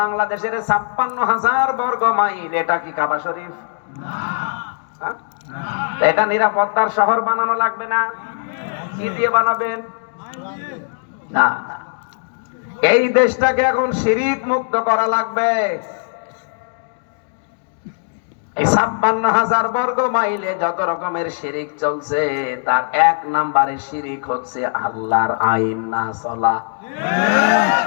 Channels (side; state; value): right; silent; digital silence